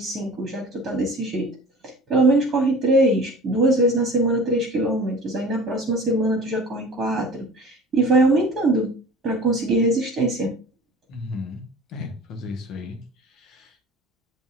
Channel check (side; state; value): both; normal; correlation 0.41